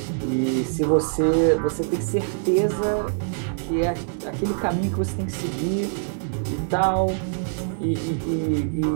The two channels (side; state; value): left; silent; digital silence